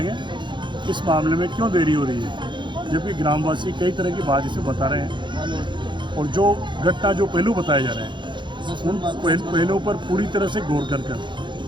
इस मामले में क्यों देरी हो रही है, जबकि ग्रामवासी कई तरह की बात इसे बता रहे हैं और जो घटना जो पहलू बताए जा रहे हैं उन पहलुओं पर पूरी तरह से गौर कर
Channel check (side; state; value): left; late; 0.23 ms